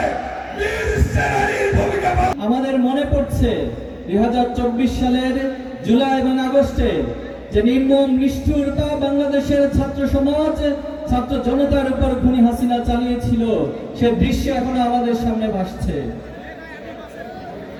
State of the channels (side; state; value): both; identical; correlation 1.00